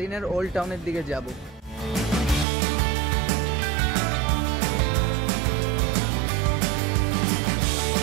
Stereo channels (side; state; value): left; drops out; at 2.5 s